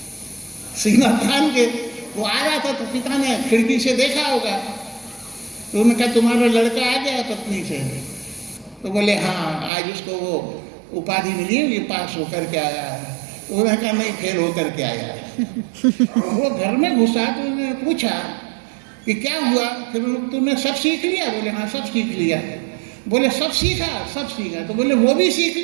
सीना तान के वो आ रहा था, तो पिता ने खिड़की से देखा होगा। तो उन्होंने कहा तुम्हारा लड़का आ गया पत्नी से? तो बोले हाँ, आज उसको वो उपाधि मिली है, ये पास होकर के आया है। उन्होंने कहा नहीं, फेल होकर के आया है। वो घर में घुसा तो उन्होंने पूछा कि क्या हुआ? फिर तुमने सब सीख लिया? बोले हाँ, सब सीख लिया। बोले सब सीखा? सब सीखा। तो बोले वो भी सीख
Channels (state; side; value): drops out; left; at 9.7 s